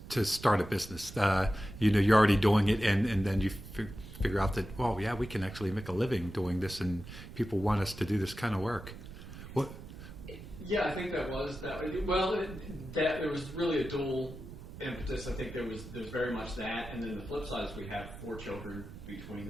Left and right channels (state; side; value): noise; right; rumble, 13 dB below the sound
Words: start a business. You're already doing it, and then you figure out that, well, yeah, we can actually make a living doing this, and people want us to do this kind of work. What? Yeah, I think that was that. Well, there was really a dual impetus. I think there's very much that, and then the flip side is we have 4 children between